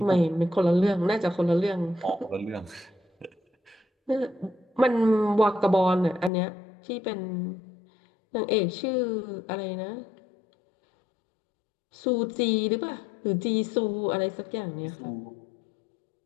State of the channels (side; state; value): right; drops out; at 6.3 s